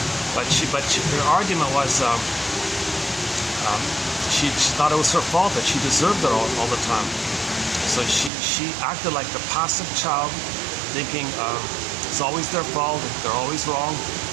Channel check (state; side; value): drops out; left; at 8.3 s